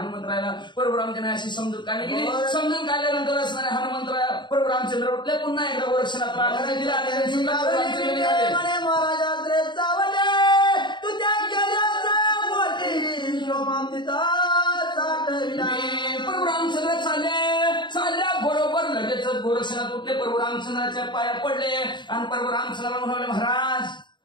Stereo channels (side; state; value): right; late; 0.22 ms